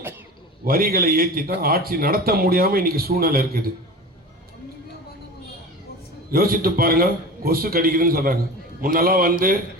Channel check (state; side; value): normal; both; correlation 0.33